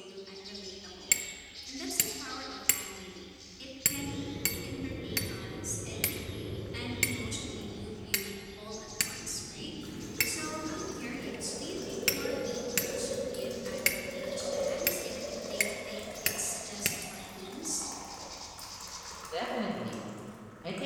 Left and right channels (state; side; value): identical; both; correlation 1.00